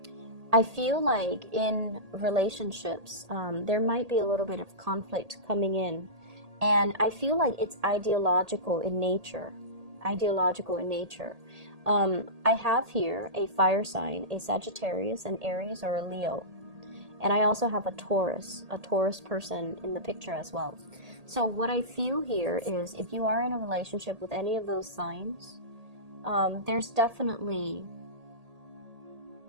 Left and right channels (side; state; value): left; late; 1.8 ms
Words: I feel like in relationships, there might be a little bit of conflict coming in. And I feel like it's ideological in nature. Ideological in nature. I have here a fire sign, a Sagittarius, an Aries, or a Leo. And I also have a Taurus person in the picture as well. So what I feel here is, if you are in a relationship with any of those signs, there's definitely